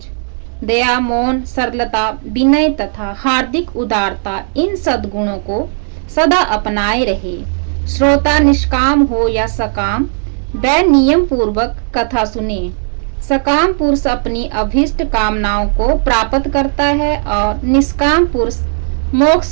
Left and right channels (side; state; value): left; silent; 62 dB below the other